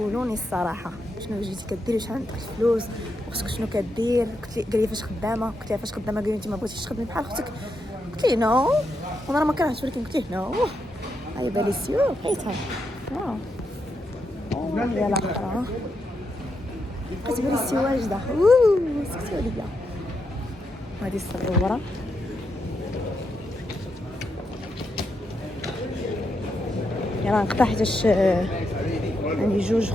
الصراحه شنو جيتي كديري، شحال عندك الفلوس، وخصك شنو كدير. قال لي فاش خدامه. قلت لها فاش خدامه. قال لي انت ما بغيتيش تخدمي بحال اختك. قلت لي نو، وانا ما كرهتش ولكن قلت ليه نو. هاي باليسيو حيتها يا الاخرى بقيت باليسيو واجده. سكتوا ليا. هادي الصغيره يلا نقطع حيتاش عندي جوج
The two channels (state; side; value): normal; both; correlation 0.83